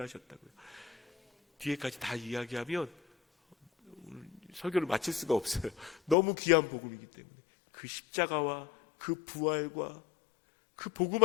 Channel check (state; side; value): drops out; right; at 6.2 s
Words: 뒤에까지 다 이야기하면 설교를 마칠 수가 없어요. 너무 귀한 복음이기 때문에. 그 십자가와 그 부활과 그 복음